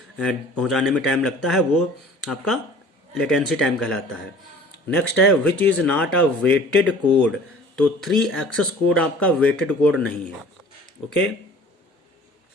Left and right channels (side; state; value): both; normal; correlation 0.48